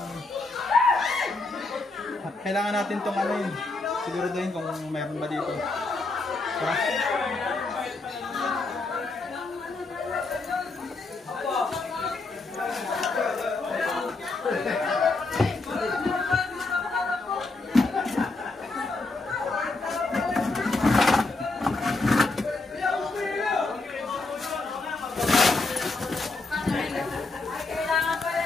tong ano yun. Siguraduhin kung mayroon ba dito. Diba?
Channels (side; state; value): right; quieter; 3.4 dB